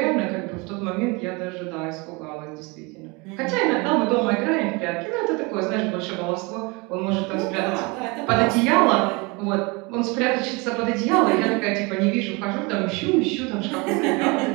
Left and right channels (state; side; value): quieter; left; 27.4 dB